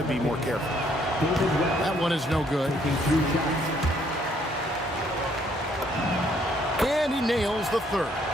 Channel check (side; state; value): both; normal; correlation 0.67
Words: be more careful. That one is no good. And he nails the third.